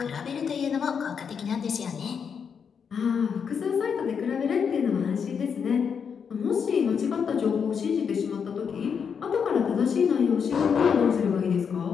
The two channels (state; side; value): quieter; right; 6.7 dB